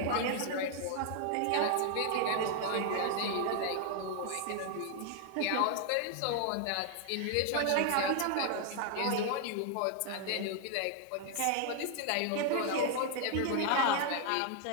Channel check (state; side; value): different; both; correlation 0.00